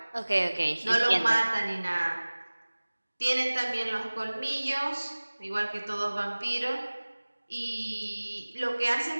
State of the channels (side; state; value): both; inverted; correlation -1.00